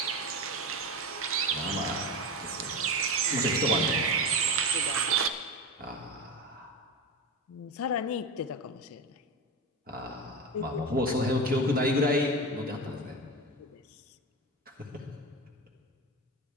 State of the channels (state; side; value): normal; both; correlation 0.22